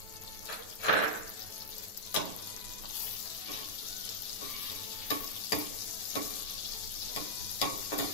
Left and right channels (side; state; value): right; late; 9.3 ms